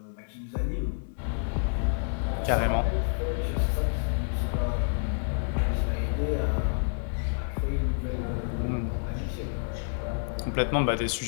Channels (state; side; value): silent; right; digital silence